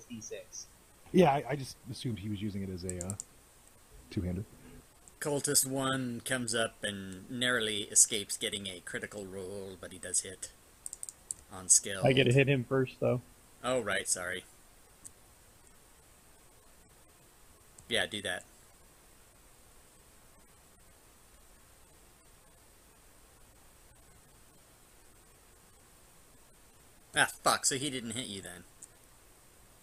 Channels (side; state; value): both; identical; correlation 1.00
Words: D6. Yeah, I just assumed he was using it as a two-handed. Cultist 1 comes up and narrowly escapes getting a critical roll, but he does hit on skill. I get to hit him first, though. Oh, right, sorry. Yeah, do that. Ah, fuck, so he didn't hit you then.